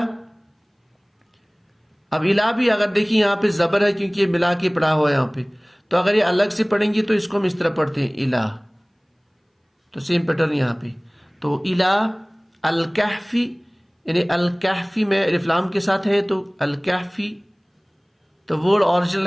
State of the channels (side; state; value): both; identical; correlation 1.00